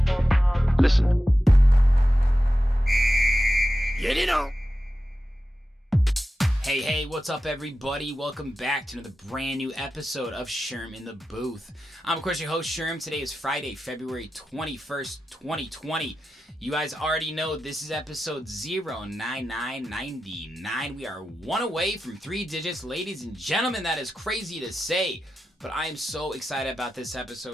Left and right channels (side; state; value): both; normal; correlation 0.92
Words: Listen. Get it on. Hey, what's up, everybody? Welcome back to another brand new episode of Sherm in the Booth. I'm, of course, your host, Sherm. Today is Friday, February 21st, 2020. You guys already know this is episode 09999. We are one away from 3 digits, ladies and gentlemen. That is crazy to say. But I am so excited about this